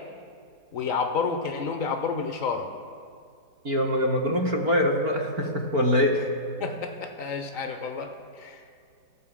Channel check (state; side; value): late; left; 3.9 ms